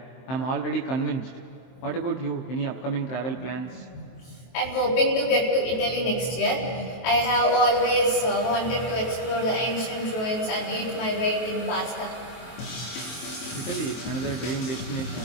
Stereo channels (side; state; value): right; late; 23 ms